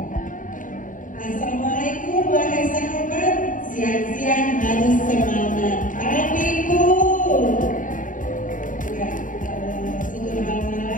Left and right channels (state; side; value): late; right; 0.38 ms